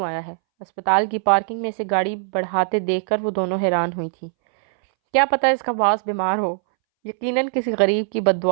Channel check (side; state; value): left; silent; 64 dB below the other